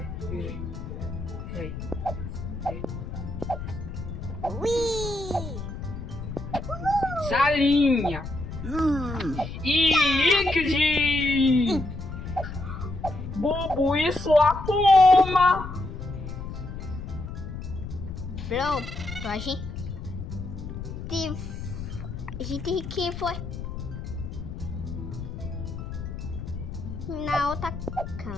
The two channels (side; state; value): left; noise; rumble, 8 dB below the sound